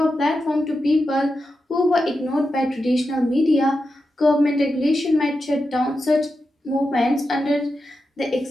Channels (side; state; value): both; normal; correlation 0.89